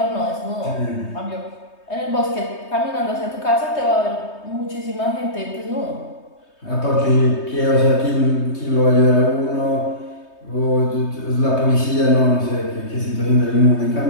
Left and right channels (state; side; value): late; right; 3.2 ms